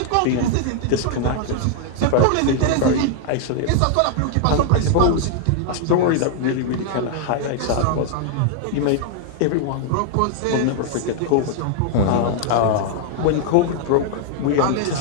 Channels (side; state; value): both; different; correlation -0.01